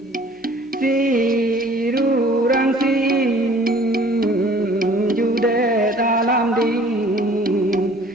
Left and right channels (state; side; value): normal; both; correlation 0.52